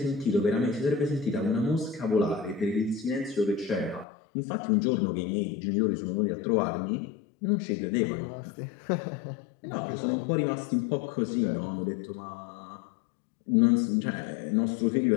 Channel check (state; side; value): drops out; right; at 4.0 s